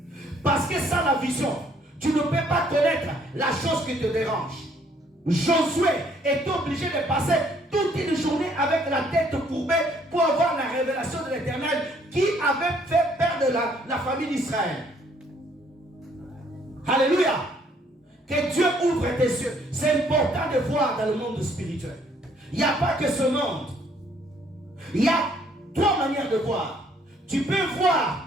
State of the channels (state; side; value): normal; both; correlation 0.65